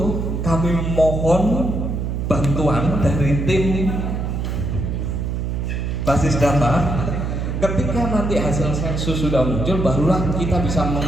kami mohon bantuan dari tim basis data. Ketika nanti hasil sensus sudah muncul, barulah kita bisa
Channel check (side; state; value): right; noise; hum, 2 dB below the sound